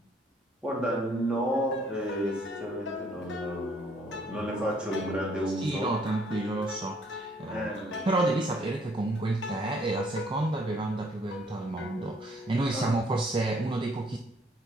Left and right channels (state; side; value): normal; both; correlation 0.64